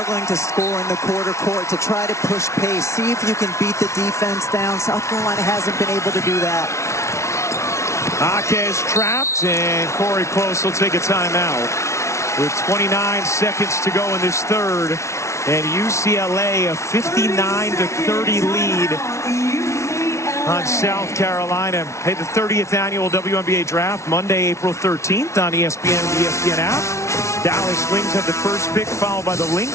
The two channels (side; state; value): right; late; 0.13 ms